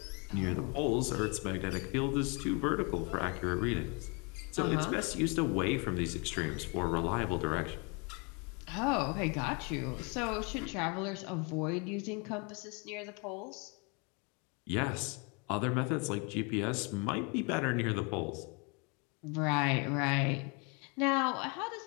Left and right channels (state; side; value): quieter; right; 32.5 dB